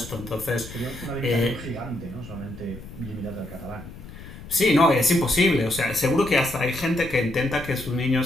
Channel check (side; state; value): left; noise; rumble, 14 dB below the sound